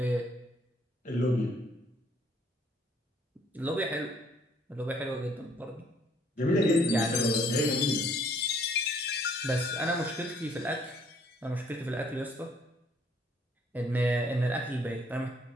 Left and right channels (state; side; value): normal; both; correlation 0.63